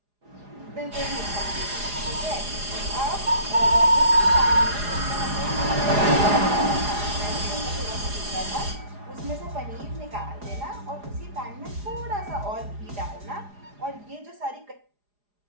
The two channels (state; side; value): late; left; 4.9 ms